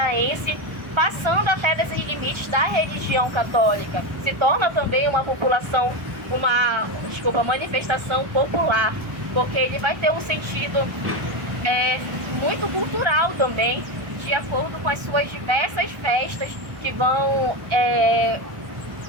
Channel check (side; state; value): left; late; 1.3 ms